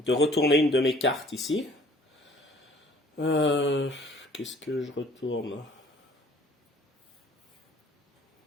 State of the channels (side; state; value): both; normal; correlation 0.55